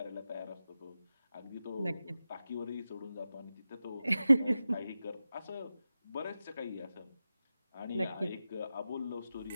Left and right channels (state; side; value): inverted; both; correlation -0.93